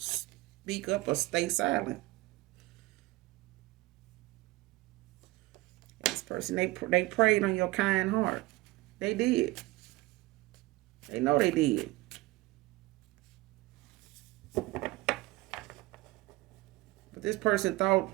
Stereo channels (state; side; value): quieter; left; 20.1 dB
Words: up or stay silent. This person, they preyed on your kind heart. They did. They know they did. But this person thought,